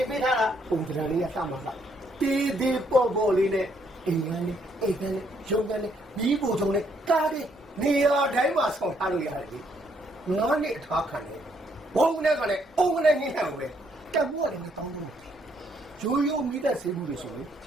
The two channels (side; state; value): both; normal; correlation 0.71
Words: င်ပေးထားတာပုံစံလေးရစမှာလားတေးသေးပေါ်လေးနဲ့အိမ်ကလေးရုံကလေးမိဖို့ထုံလေးကားတွေနေရာတိုင်းမှာဆောင်ထားလို့ရတယ်လေ9နှစ်အထားခံတယ်ဘုံနဲ့ကလည်းအုံနဲ့ညှိနှံ့ပဲတက်ဖို့ကလည်းမတောင်းဘူးရိုးမိသက်စေးဘူးတွေဆိုရင်